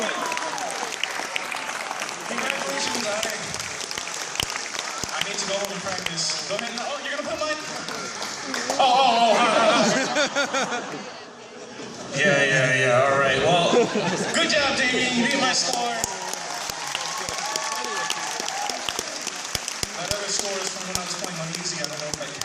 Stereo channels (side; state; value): both; identical; correlation 1.00